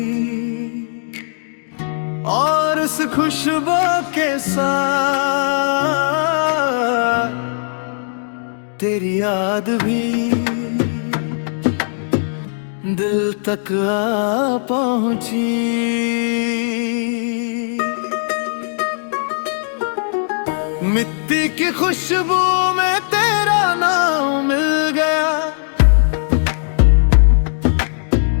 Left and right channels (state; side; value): silent; right; digital silence